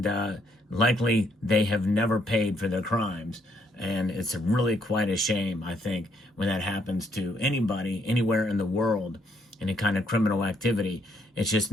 likely they have never paid for their crimes. And it's really quite a shame, I think, when that happens to anybody, anywhere in the world, any kind of criminal activity. It's just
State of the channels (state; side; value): normal; both; correlation 0.71